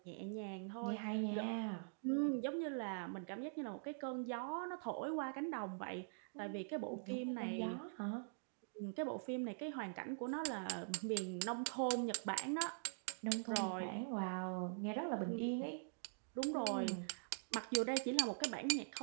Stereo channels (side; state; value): left; silent; digital silence